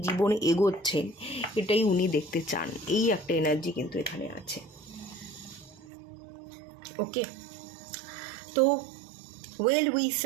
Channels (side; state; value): left; drops out; at 5.9 s